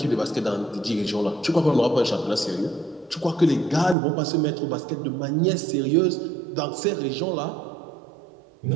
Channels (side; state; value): left; drops out; at 4.0 s